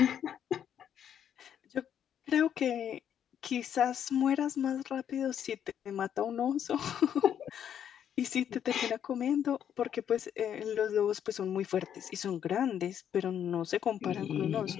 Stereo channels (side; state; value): right; quieter; 9.2 dB